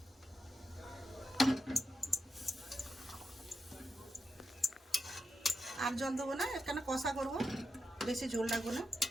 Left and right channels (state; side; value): normal; both; correlation 0.87